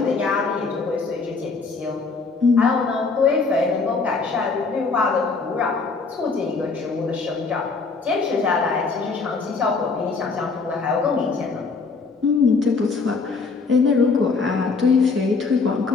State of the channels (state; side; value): quieter; right; 4.4 dB